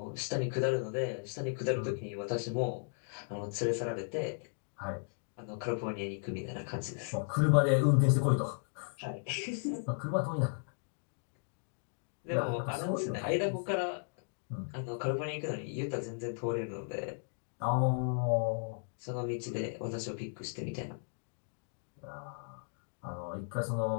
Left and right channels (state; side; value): silent; right; digital silence